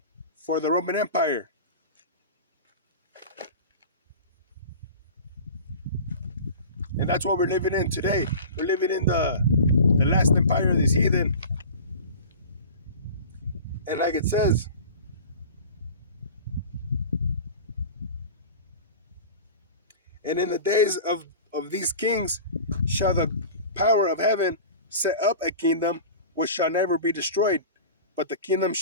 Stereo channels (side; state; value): both; inverted; correlation -0.36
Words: for the Roman Empire. And that's what we're living in today. We're living in the last empire of this heathen. And like it says, and in the days of these kings shall the power of heaven set up a kingdom which shall never be destroyed, but the kingdom